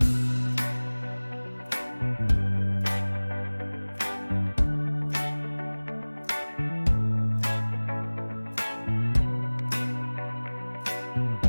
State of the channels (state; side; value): inverted; both; correlation -1.00